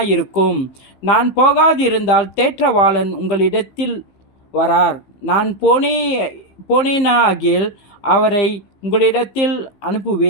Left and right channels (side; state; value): right; late; 15 ms